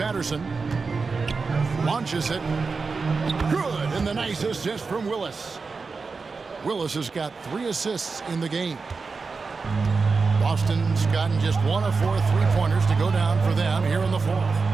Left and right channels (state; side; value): quieter; left; 4.5 dB